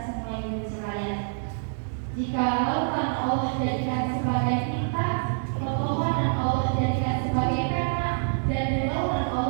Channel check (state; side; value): silent; left; 61 dB below the other